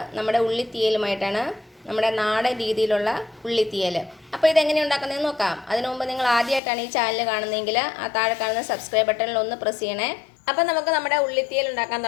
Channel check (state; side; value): drops out; right; at 6.6 s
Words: നമ്മുടെ ഉള്ളിത്തീയലുമായിട്ടാണ്. നമ്മുടെ നാടൻ രീതിയിലുള്ള ഉള്ളിത്തീയൽ. അപ്പോൾ ഇതെങ്ങനെ ഉണ്ടാക്കുന്നതെന്ന് നോക്കാം. അതിനു മുമ്പ് നിങ്ങൾ ആദ്യമായിട്ടാണ് ഈ ചാനൽ കാണുന്നതെങ്കിൽ ആ താഴെ കാണുന്ന സബ്സ്ക്രൈബ് ബട്ടണിൽ ഒന്ന് പ്രസ് ചെയ്യണേ. അപ്പോൾ നമുക്ക് നമ്മുടെ ഉള്ളിത്തീയൽ ഉണ്ടാക്കാൻ